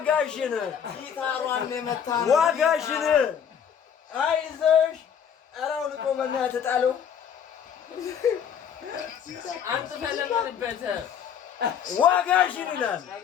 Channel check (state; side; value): quieter; right; 8.1 dB